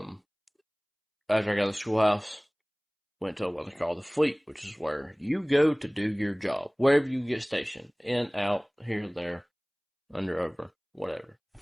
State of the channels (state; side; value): identical; both; correlation 1.00